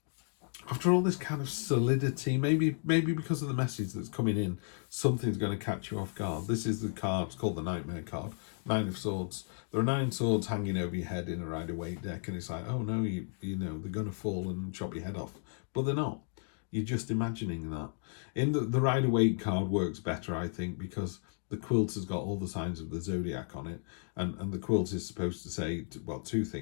After all this kind of solidity, maybe because of the message that's coming in, something's going to catch you off guard. This is the card, it's called the Nightmare card, 9 of Swords. There are 9 swords hanging over your head in a Rider-Waite deck, and it's like, oh no, you know, they're going to fall and chop your head off. But they're not. You're just imagining that. In the Rider-Waite card works better, I think, because the quilt has got all the signs of the zodiac on it, and the quilt is supposed to say, well, 2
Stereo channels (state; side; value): silent; right; 55 dB below the other